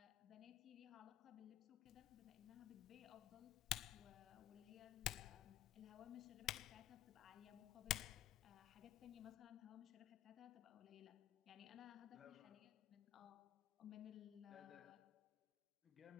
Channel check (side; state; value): right; quieter; 12.1 dB